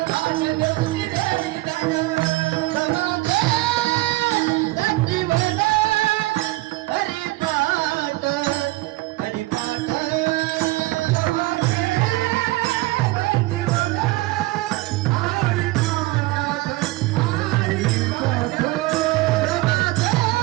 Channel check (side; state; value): left; quieter; 20.0 dB